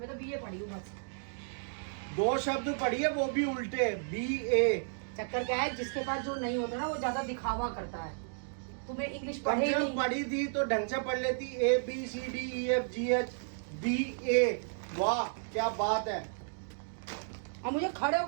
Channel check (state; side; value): silent; left; digital silence